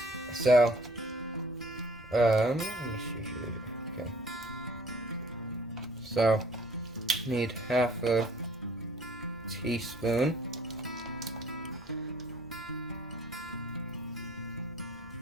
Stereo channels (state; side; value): normal; both; correlation 0.57